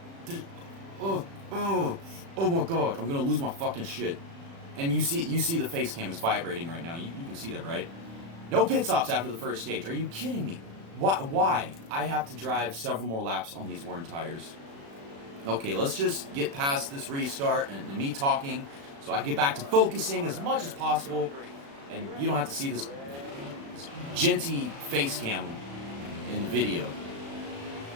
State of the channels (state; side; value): late; left; 36 ms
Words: Oh my god, I'm gonna lose my fucking shit. And you see the face cam is vibrating right now. You can see that, right? No pit stops after the first stage. Are you kidding me? Why? I have to drive several more laps on these worn tires. Okay, let's just get past this restart and me talking so I can get back to focusing as much as possible, and you don't have to see this genty face cam in the video.